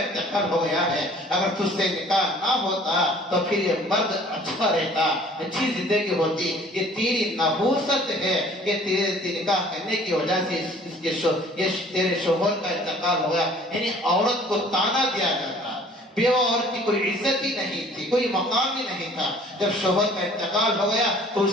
ہو گیا ہے، اگر تجھ سے نکاح نہ ہوتا تو پھر یہ مرد اچھا رہتا، اچھی زندگی ہوتی. یہ تیری نحوست ہے، یہ تیرے نکاح کرنے کی وجہ سے یہ تیرے شوہر کا انتقال ہو گیا. یعنی عورت کو تانا دیا جاتا. بیوہ عورت کی کوئی عزت ہی نہیں تھی، کوئی مقام ہی نہیں تھا. جب شوہر کا انتقال ہو گیا تو اس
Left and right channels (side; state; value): both; normal; correlation 0.53